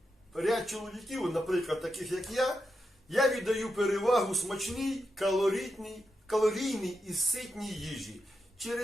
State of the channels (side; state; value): both; normal; correlation 0.87